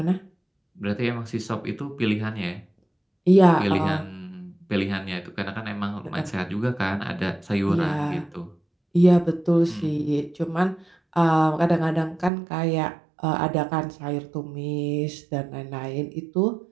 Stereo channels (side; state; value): left; drops out; at 12.3 s